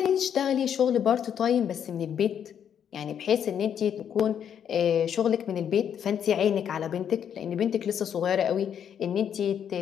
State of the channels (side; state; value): right; quieter; 8.7 dB